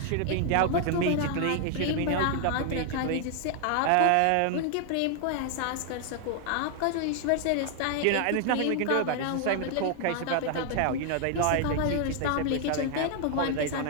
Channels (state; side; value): different; both; correlation 0.00